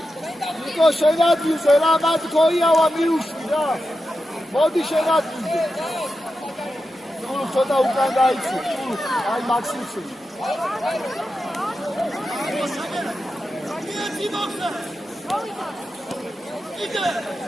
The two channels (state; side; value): normal; both; correlation 0.90